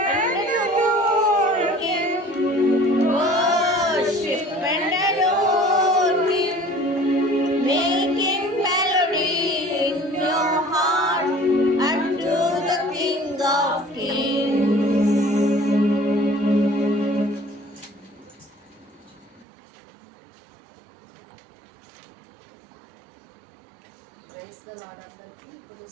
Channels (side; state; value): left; drops out; at 19.5 s